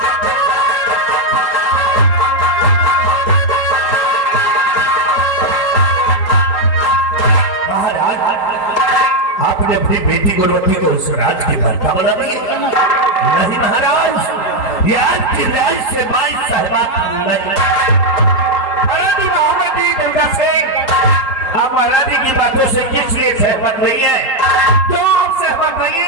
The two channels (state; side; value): late; right; 3.8 ms